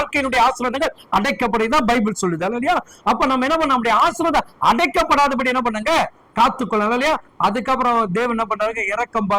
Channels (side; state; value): both; identical; correlation 1.00